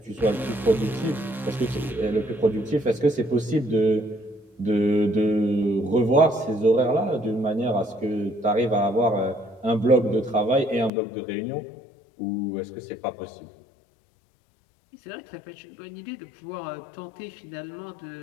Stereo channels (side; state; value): right; drops out; at 10.9 s